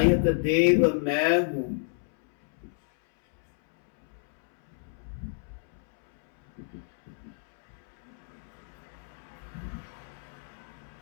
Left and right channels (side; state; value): right; silent; 59 dB below the other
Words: देव मैं हूँ।